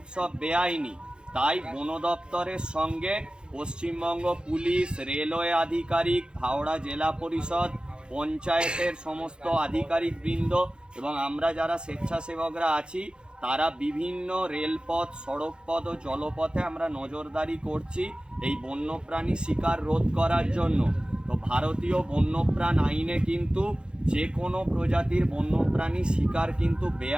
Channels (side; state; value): left; late; 0.050 ms